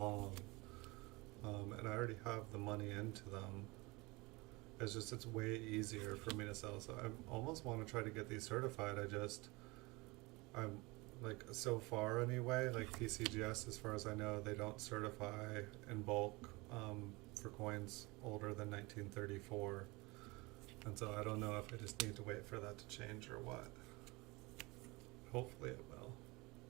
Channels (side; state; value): left; quieter; 24.4 dB